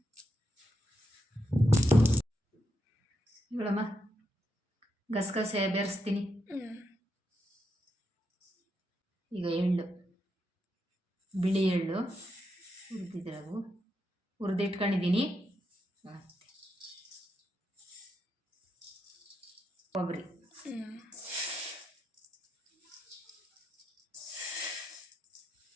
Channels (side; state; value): both; normal; correlation 0.83